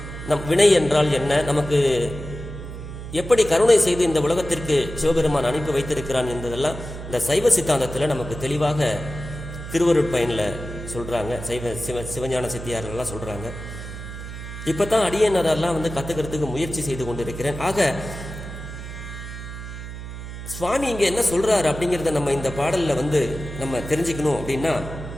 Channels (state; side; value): noise; right; hum, 10 dB below the sound